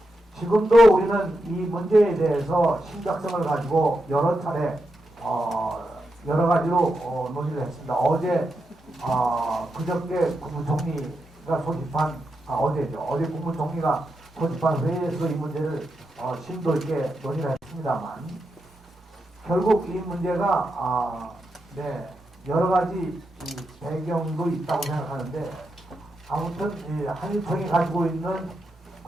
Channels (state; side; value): normal; both; correlation 0.86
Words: 지금도 우리는 이 문제에 대해서 심각성을 가지고 여러 차례 여러 가지로 논의를 했습니다. 어제 그저께 국무총리가 소집한 어제죠. 어제 국무총리가 소집한 회의에서 이 문제를 심도 있게 논의를 했습니다만 결국 이 문제가 여러 가지 배경도 있다고 생각하는데 아무튼 한일총이 가지고 있는